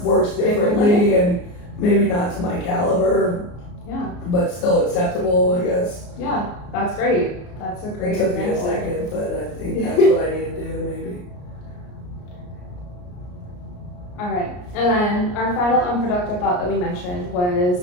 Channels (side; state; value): right; late; 34 ms